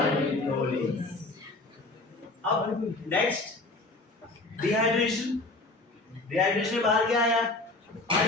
अब नेक्स्ट डिहाइड्रेशन डिहाइड्रेशन बाहर क्या आया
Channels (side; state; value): right; quieter; 3.0 dB